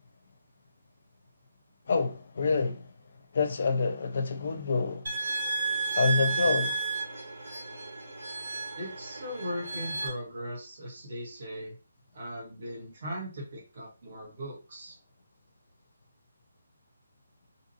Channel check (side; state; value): both; inverted; correlation -0.79